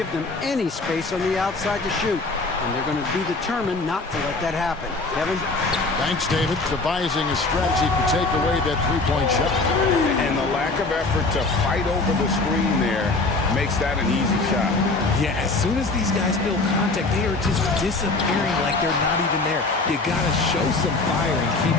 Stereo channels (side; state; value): right; quieter; 3.5 dB